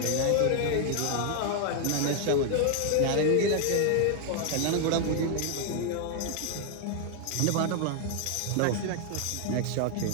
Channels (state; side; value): different; both; correlation 0.00